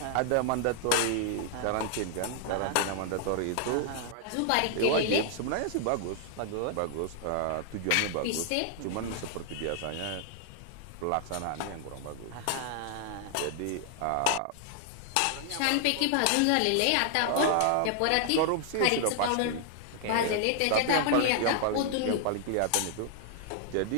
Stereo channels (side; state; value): both; different; correlation 0.00